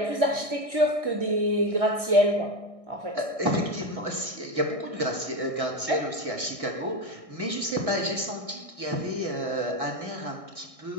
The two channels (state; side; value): late; left; 1.6 ms